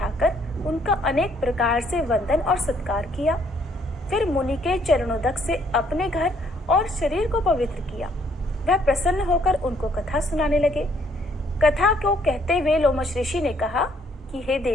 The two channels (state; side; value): normal; both; correlation 0.66